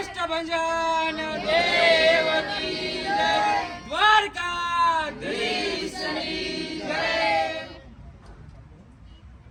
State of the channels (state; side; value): identical; both; correlation 1.00